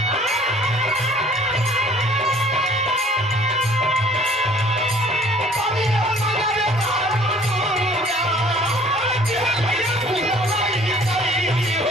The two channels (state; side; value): normal; both; correlation 0.53